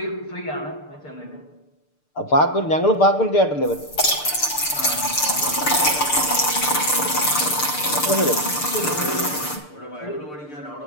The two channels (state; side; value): late; right; 6.7 ms